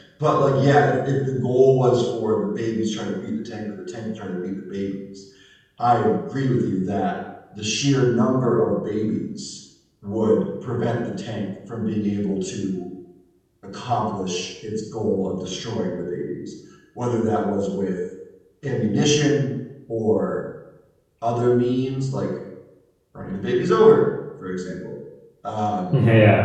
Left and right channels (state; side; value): identical; both; correlation 1.00